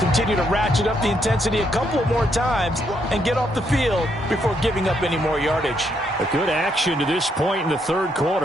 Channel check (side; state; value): both; normal; correlation 0.75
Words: continue to ratchet up the intensity a couple of more times and get off the field before giving up any more yardage. A good action to this point in the 3rd